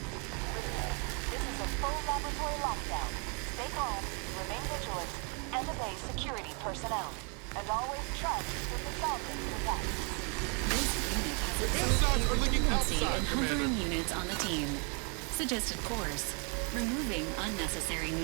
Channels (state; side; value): quieter; left; 35.8 dB